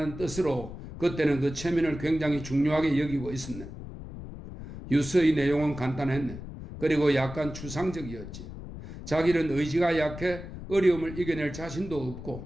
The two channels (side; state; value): left; noise; rumble, 11 dB below the sound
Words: 뜻으로 그때는 그 체면을 굉장히 중요하게 여기고 있었네. 유서의 내용은 간단했네. 그리고 약간 추상적이었지. 자기는 의지가 약해 어려움을 이겨낼 자신도